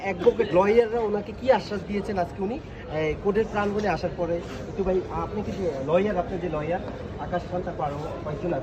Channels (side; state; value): both; identical; correlation 1.00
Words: অ্যাডভোকেট লয়াররা ওনাকে কি আশ্বাস দিয়েছেন আজকে উনি কোর্টের প্রাঙ্গণে আসার পরে। একটু ভাই, আপনি কি যে লয়ার, আপনার যে লয়ার আকাশ খান, তারপর আরও কয়েকজন